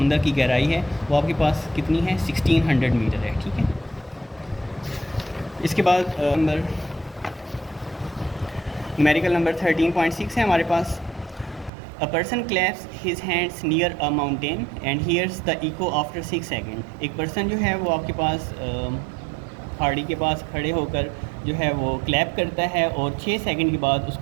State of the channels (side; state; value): left; drops out; at 11.7 s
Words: की गहराई है वो आपके पास कितनी है 1600 मीटर है, ठीक है। इसके बाद न्यूमेरिकल नंबर 13.6 है हमारे पास। A person claps his hands near a mountain and hears the echo after 6 second. एक पर्सन जो है वो आपके पास पहाड़ी के पास खड़े होकर जो है वो क्लैप करता है और 6 सेकंड के बाद